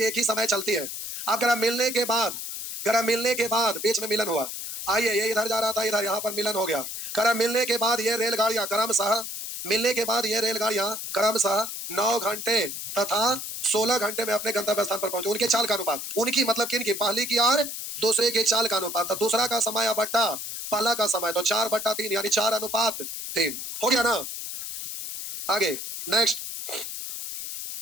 एक ही समय चलती है। अब करा मिलने के बाद, करा मिलने के बाद बीच में मिलन हुआ। आइए, ये इधर जा रहा था, इधर यहाँ पर मिलन हो गया। करा मिलने के बाद ये रेलगाड़ियां क्रमशः, मिलने के बाद ये रेलगाड़ियां क्रमशः 9 घंटे तथा 16 घंटे में अपने गंतव्य स्थान पर पहुंचे। उनके चाल का अनुपात, उनकी मतलब किनकी, पहली की और दूसरे के चाल का अनुपात। तो दूसरा का समय बट्टा पहला का समय, तो 4/3 यानी 4:3 हो गया ना। आगे नेक्स्ट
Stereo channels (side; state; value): left; noise; hiss, 6 dB below the sound